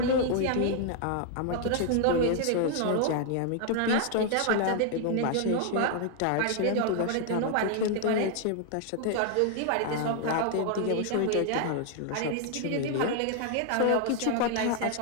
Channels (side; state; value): both; different; correlation 0.00